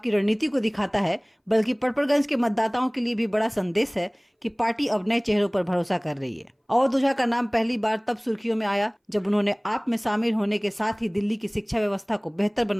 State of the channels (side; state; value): both; identical; correlation 1.00